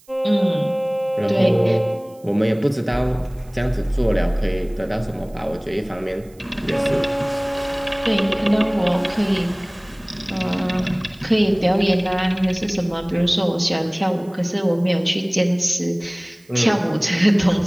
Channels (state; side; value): noise; right; hiss, 29 dB below the sound